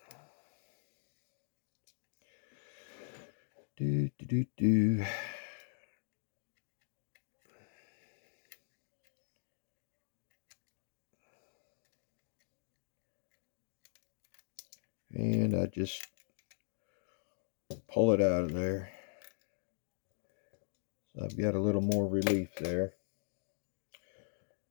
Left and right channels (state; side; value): silent; right; digital silence